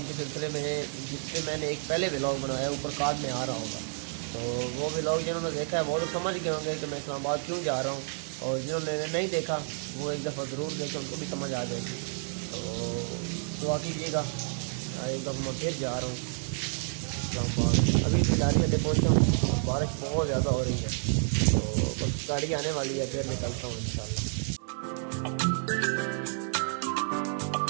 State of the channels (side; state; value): left; silent; 58 dB below the other